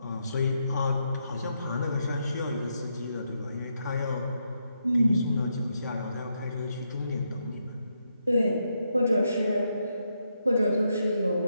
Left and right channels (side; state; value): both; inverted; correlation -0.80